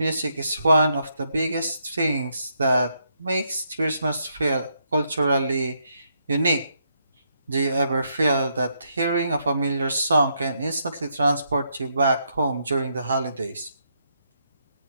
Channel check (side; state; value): both; inverted; correlation -0.77